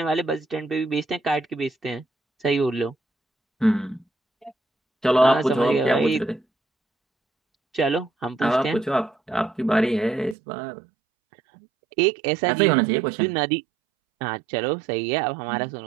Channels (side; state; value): left; drops out; at 10.4 s